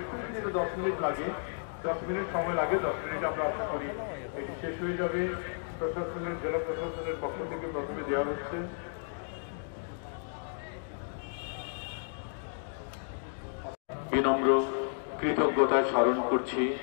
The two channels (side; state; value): right; silent; digital silence